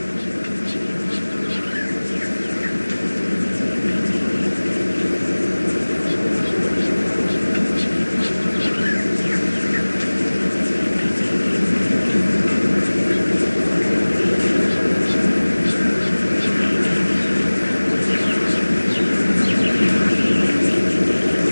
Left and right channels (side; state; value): both; inverted; correlation -1.00